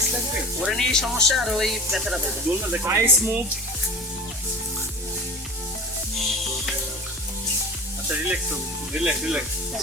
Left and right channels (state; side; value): normal; both; correlation 0.35